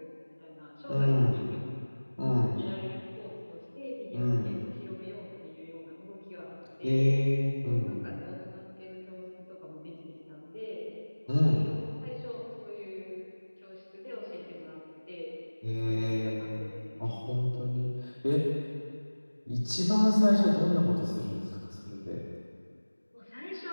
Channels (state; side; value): inverted; both; correlation -1.00